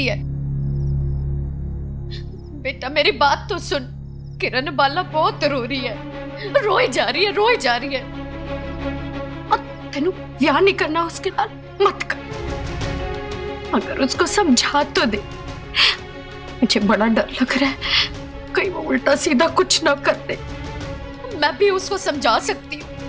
है। बेटा मेरी बात तो सुन, किरण बाला बहुत रो रही है, रोई जा रही है, रोई जा रही है। और तेनू ब्याह नहीं करना उसके नाल मत कर। अगर उसको समझा तो दे। मुझे बड़ा डर लग रहा है कहीं वो उल्टा सीधा कुछ ना कर दे। मैं भी उसको समझा सकती हूँ,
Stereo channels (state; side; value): identical; both; correlation 1.00